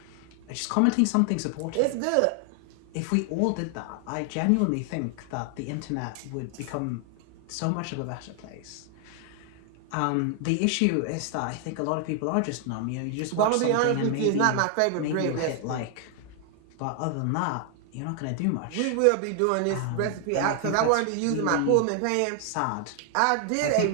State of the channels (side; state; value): both; different; correlation 0.00